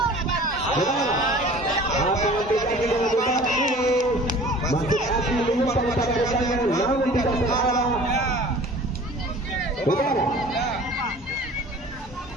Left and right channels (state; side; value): normal; both; correlation 0.45